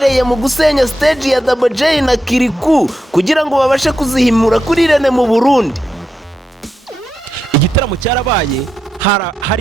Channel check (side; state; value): both; normal; correlation 0.86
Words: mu gusenya stage ya Double J na Kiriku kugira ngo babashe kuzihimura kuri Rene mu Burundi. Igitaramo cyarabaye